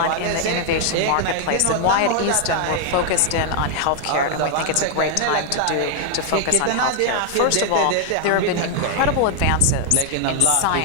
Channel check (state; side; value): different; both; correlation 0.00